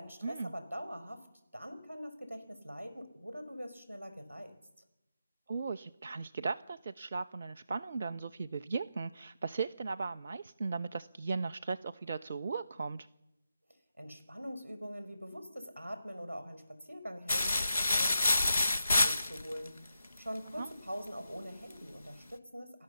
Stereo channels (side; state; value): both; inverted; correlation -0.86